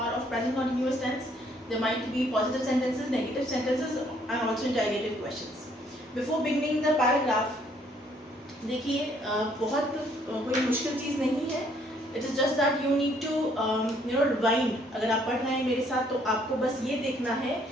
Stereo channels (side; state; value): both; normal; correlation 0.65